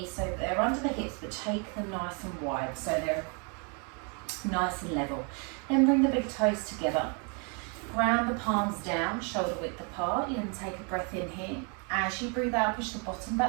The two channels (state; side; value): quieter; left; 36.1 dB